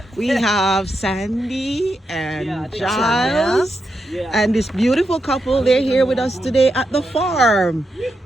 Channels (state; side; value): normal; both; correlation 0.85